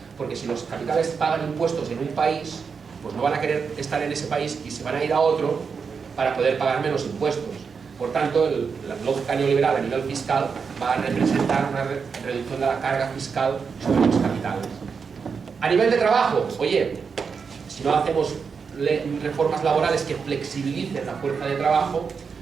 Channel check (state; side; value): quieter; left; 5.7 dB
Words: porque si los capitales pagan impuestos en un país, pues no van a querer estar en ese país y se van a ir a otro para poder pagar menos impuestos. Por tanto, la lógica neoliberal a nivel fiscal va a representar una reducción de la carga fiscal sobre los capitales. A nivel de trabajo, oye, si no hacemos reformas laborales que flexibilicen la fuerza de trabajo,